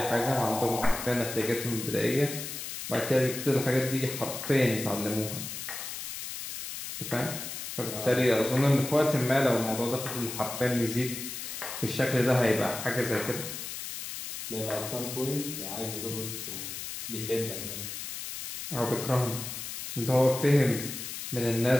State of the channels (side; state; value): left; noise; hiss, 7 dB below the sound